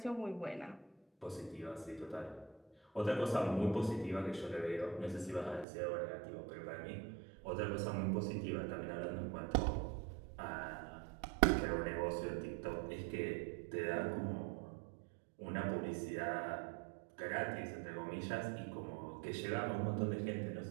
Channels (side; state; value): left; drops out; at 5.7 s